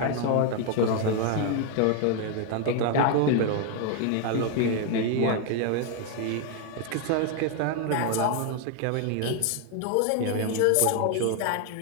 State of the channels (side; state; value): both; different; correlation 0.01